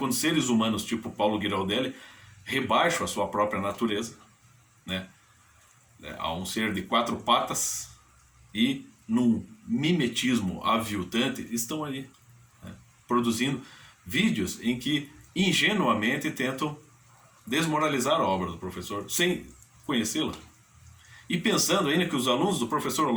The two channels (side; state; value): both; identical; correlation 1.00